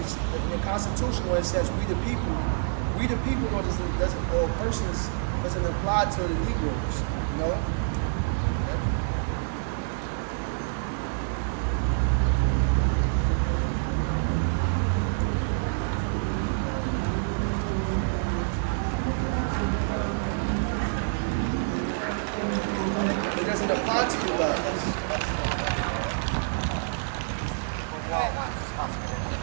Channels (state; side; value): silent; left; 60 dB below the other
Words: the Constitution where it says we the people though doesn't or persons doesn't apply to the Negroes, you know? Yep. It doesn't apply to you guys.